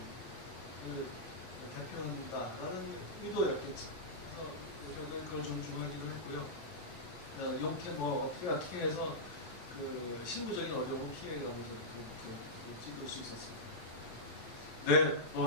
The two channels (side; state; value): right; late; 8.3 ms